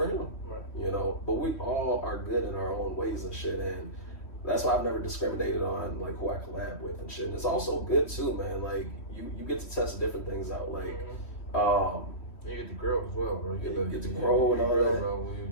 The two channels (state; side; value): late; right; 3.1 ms